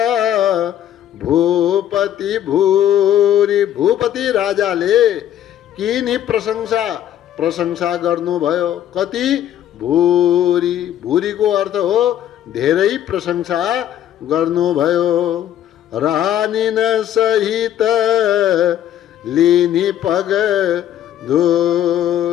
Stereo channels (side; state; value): right; quieter; 11.2 dB